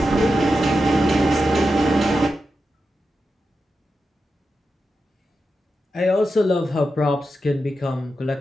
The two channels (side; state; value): both; normal; correlation 0.89